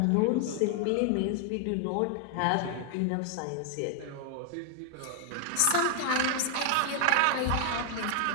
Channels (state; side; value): different; both; correlation 0.00